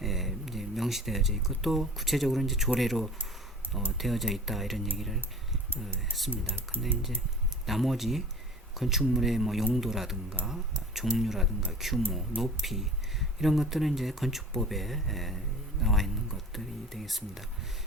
이제 명시되어져 있고 또 구체적으로 이제 조례로 되어져 있다 이런 얘기를 했습니다. 근데 이제 나머지 건축물의 뭐 용도라든가 종류라든가 규모, 높이 이런 것들은 이제 건축법에 나와 있는 것들이 되겠습니다.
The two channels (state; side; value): normal; both; correlation 0.43